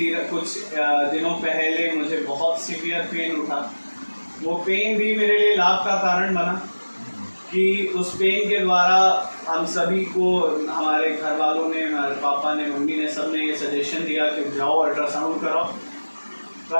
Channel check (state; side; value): inverted; both; correlation -1.00